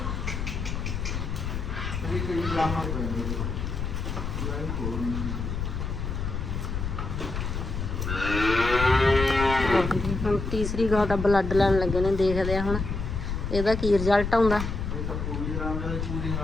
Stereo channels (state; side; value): noise; left; rumble, 3 dB below the sound